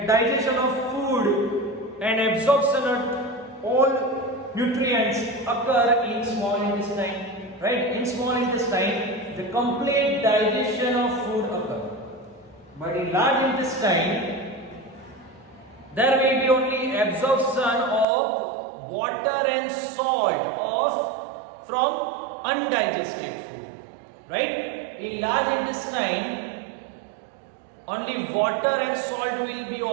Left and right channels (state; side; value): drops out; left; at 18.1 s